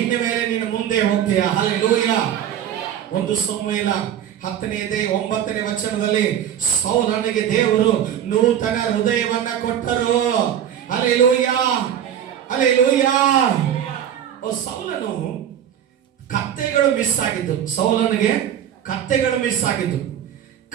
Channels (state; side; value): quieter; left; 9.9 dB